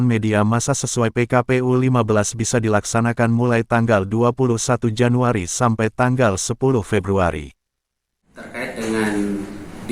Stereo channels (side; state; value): both; identical; correlation 1.00